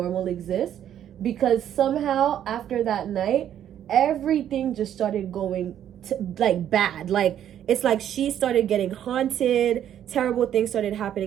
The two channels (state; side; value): quieter; left; 10.4 dB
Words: exists, because somehow after that night, everything just started going like bad. Like, it's like she started getting haunted, terrible things started